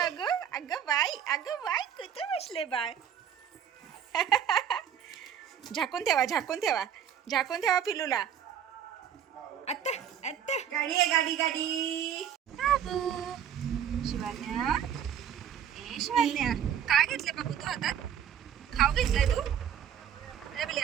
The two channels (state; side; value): quieter; left; 9.0 dB